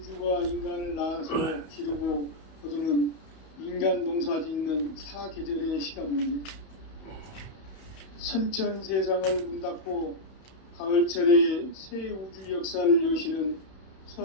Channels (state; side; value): late; right; 31 ms